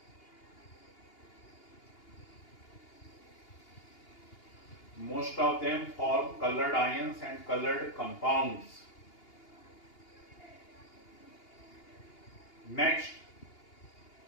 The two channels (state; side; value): late; right; 2.8 ms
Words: Most of them form colored ions and colored compounds. Next,